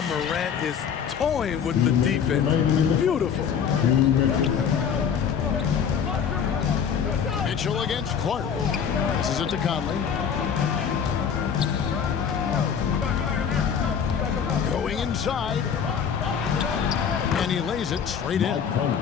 Morant is toying with the defense. Beautiful. Mitchell against Clark. This is it to Conley. Going inside. And he lays it straight in.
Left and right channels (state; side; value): quieter; right; 7.4 dB